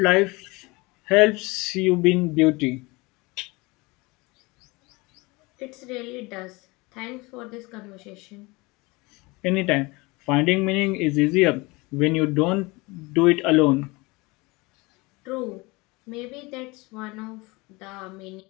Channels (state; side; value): quieter; right; 24.5 dB